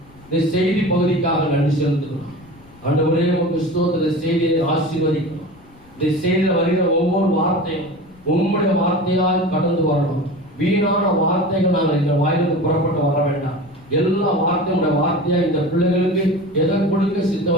இந்த செய்தி பகுதிக்காக நன்றி செலுத்துகிறோம். ஆண்டவரே, உமக்கு ஸ்தோத்திர செய்தியை ஆசீர்வதிக்கிறோம். இந்த செய்தியில் வருகிற ஒவ்வொரு வார்த்தையும் உம்முடைய வார்த்தையால் கடந்து வரணும். வீணான வார்த்தைகள் நாங்கள் இந்த வாயிலிருந்து புறப்பட்டு வர வேண்டாம். எல்லா வார்த்தையோட வார்த்தையா இந்த பிள்ளைகளுக்கு எதை கொடுக்க சித்த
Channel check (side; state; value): left; noise; rumble, 27 dB below the sound